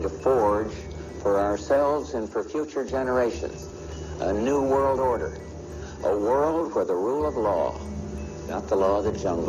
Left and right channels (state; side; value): identical; both; correlation 1.00